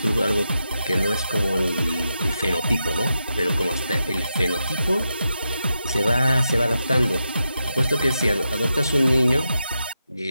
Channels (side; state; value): both; inverted; correlation -0.88